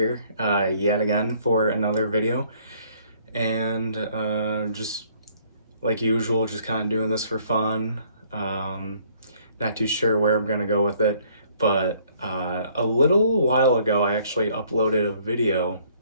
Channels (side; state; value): both; inverted; correlation -0.61